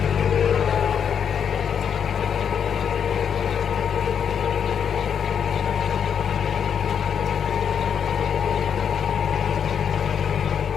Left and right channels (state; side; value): quieter; right; 7.7 dB